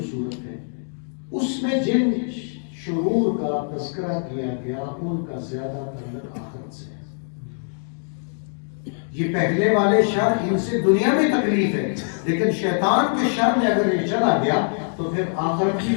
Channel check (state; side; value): silent; right; 62 dB below the other